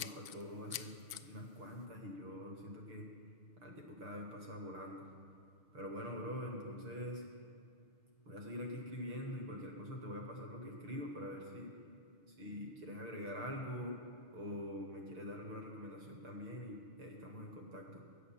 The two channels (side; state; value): left; late; 6.6 ms